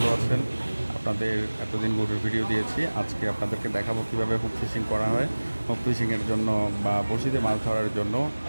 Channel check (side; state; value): both; inverted; correlation -1.00